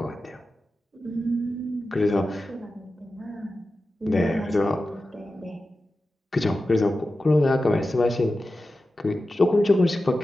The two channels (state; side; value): normal; both; correlation 0.93